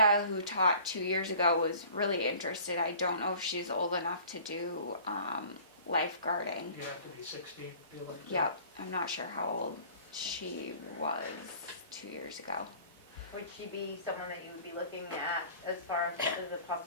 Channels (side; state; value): both; inverted; correlation -0.47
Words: who taught 2 years ago, was really interested. I don't know if she's old enough to do lifeguarding. You have to be 16, feel like. Yep, I'm not sure how old she was 2 years ago. Would she be someone that you would be looking at as far as a